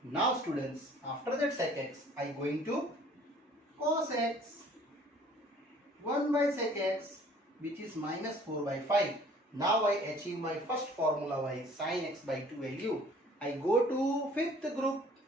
Now students, after that sec x, I going to cos x. 1 by sec x, which is minus 4 by 5. Now I achieve my first formula by sin x by 2 value. I go to fifth group.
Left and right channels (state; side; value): normal; both; correlation 0.54